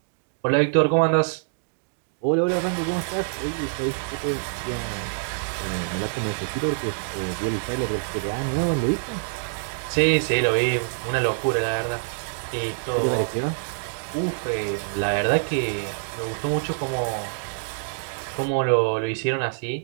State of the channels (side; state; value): left; silent; digital silence